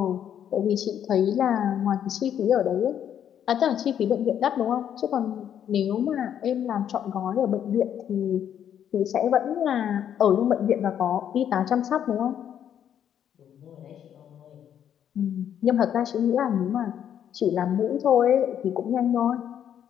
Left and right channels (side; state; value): right; quieter; 9.5 dB